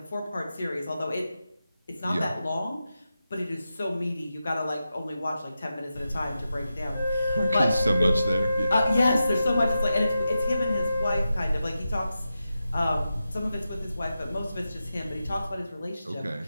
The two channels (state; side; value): inverted; both; correlation -0.90